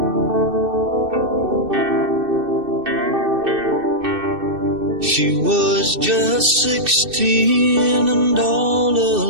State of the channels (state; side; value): late; left; 2.6 ms